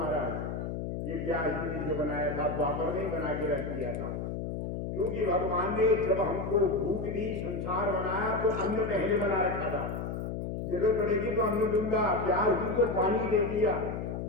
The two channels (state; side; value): noise; left; hum, 4 dB below the sound